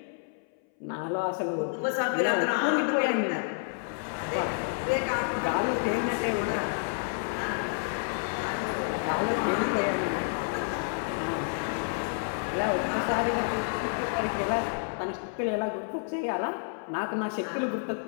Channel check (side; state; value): right; silent; 58 dB below the other